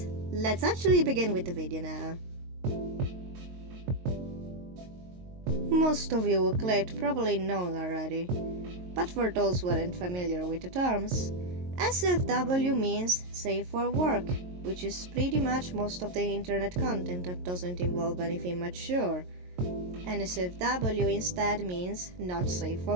let's actually begin with the video now. Most of you who clicked probably know already, but for those who aren't familiar with the terms, SFW means Safe for Work, which is pretty much most of the internet content that doesn't involve anything mature. NSFW instead means Not Safe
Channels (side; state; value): left; late; 22 ms